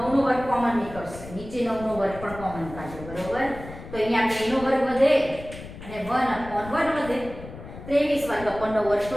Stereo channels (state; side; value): noise; left; rumble, 14 dB below the sound